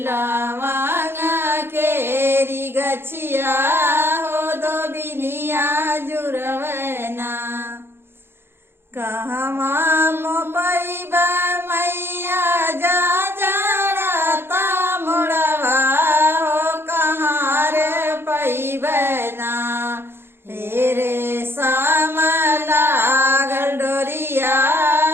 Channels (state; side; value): late; left; 0.11 ms